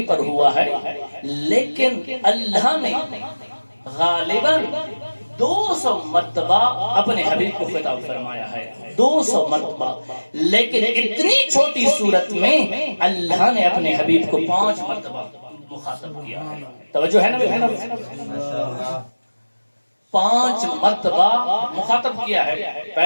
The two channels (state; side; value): inverted; both; correlation -1.00